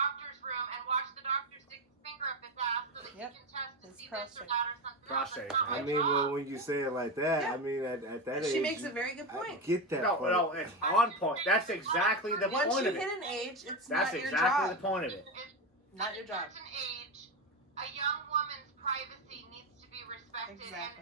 room and watch the doctor stick his finger up his ass so that Yep. can test to It's see this prostate. or that or something Prostate. else. That's not I my mean, well, job. when you say it like that, Yeah. I mean, at that age, She makes a very good I point. get that No, part. no, it's on point. That's exactly the Once point you of hit it. an age, it's That's not your exactly the job. point of it. Not At your a job. certain age, a young woman's privacy needs to be respected.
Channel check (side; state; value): both; normal; correlation 0.15